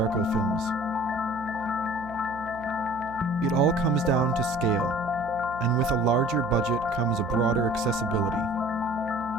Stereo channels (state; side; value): noise; right; hum, 17 dB below the sound